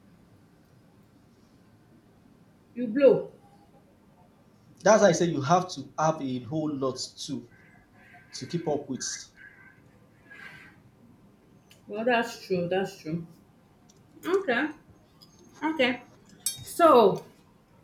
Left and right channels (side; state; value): both; identical; correlation 1.00